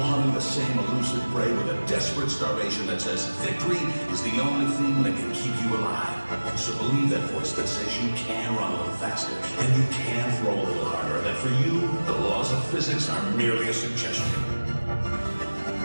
hunting the same elusive prey with a desperate starvation that says victory is the only thing that can keep you alive. So believe that voice that says you can run a little faster, and you can throw a little harder, and that for you, the laws of physics are merely a suggestion.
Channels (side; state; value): both; inverted; correlation -1.00